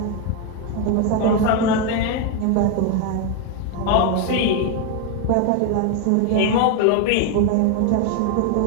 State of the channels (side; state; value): both; different; correlation 0.01